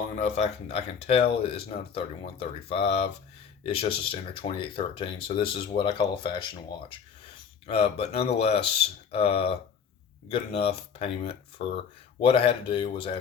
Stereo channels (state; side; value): quieter; right; 6.8 dB